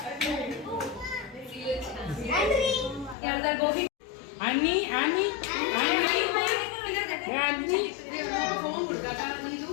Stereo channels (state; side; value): drops out; right; at 3.2 s